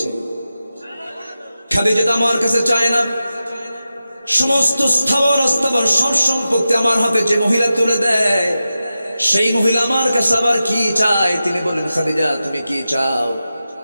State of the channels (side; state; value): both; inverted; correlation -0.92